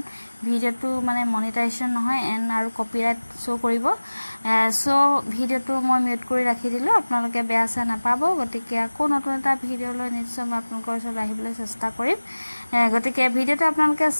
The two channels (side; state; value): both; inverted; correlation -1.00